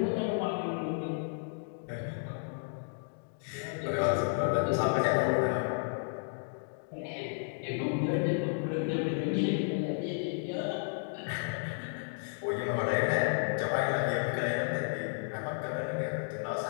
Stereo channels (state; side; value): silent; right; digital silence